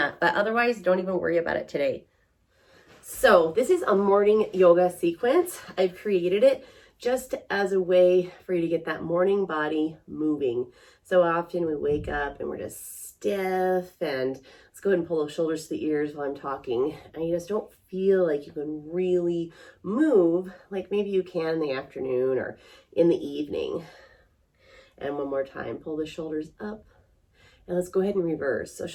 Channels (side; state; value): both; identical; correlation 1.00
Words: but otherwise, don't even worry about it today. So this is a morning yoga sequence. I've created it just as a way for you to get that morning body moving. So often we wake up and we're just stiff, and let's go ahead and pull those shoulders to the ears while I'm talking, and you just don't feel like you can really move like maybe you can in the afternoon or in the evening. And one more time, pull the shoulders up, and let's go ahead and reverse. So